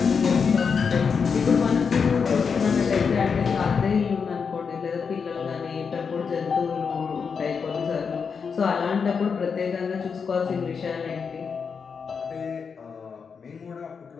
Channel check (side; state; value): right; quieter; 5.9 dB